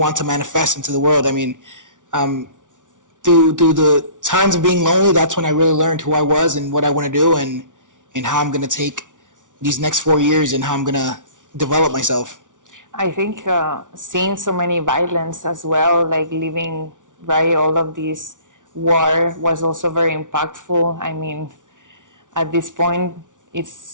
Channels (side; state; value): left; late; 0.87 ms